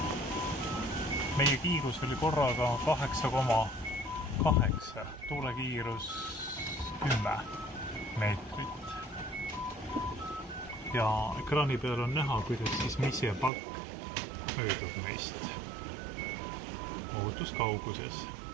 Meie kiirus oli korraga 8,8, tuulekiirus 10 meetrit. Ja ekraani peal on näha, kuidas siis Misje Pakk möödub meist ohutuskauguses.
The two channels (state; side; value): drops out; left; at 13.5 s